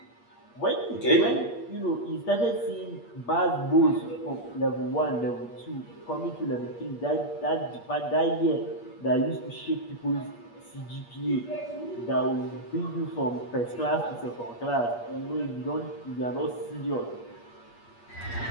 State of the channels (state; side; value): late; right; 8.5 ms